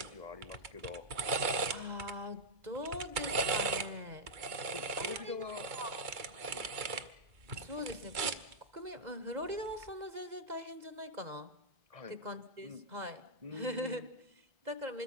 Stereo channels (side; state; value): left; late; 2.2 ms